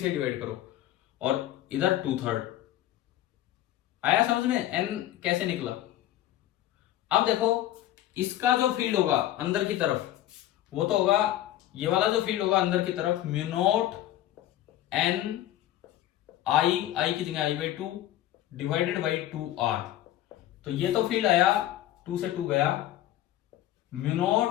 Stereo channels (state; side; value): quieter; right; 13.4 dB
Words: डिवाइड करो, और इधर 2/3 आया समझ में? n कैसे निकला? अब देखो, इसका जो फील्ड होगा अंदर की तरफ, वो तो होगा, ये वाला जो फील्ड होगा अंदर की तरफ, म्यू नॉट n I की जगह I/2 डिवाइडेड बाई 2r। तो ये तो फील्ड आया, 2 से 2 गया, mu